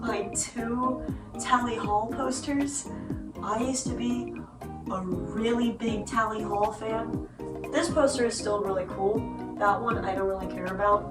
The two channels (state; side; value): identical; both; correlation 1.00